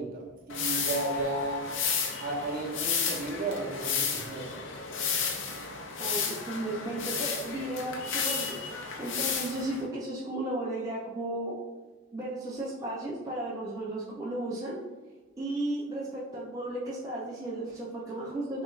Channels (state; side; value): normal; both; correlation 0.15